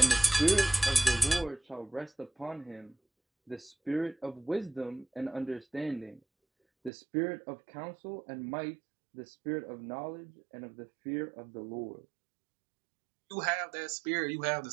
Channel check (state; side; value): drops out; left; at 6.9 s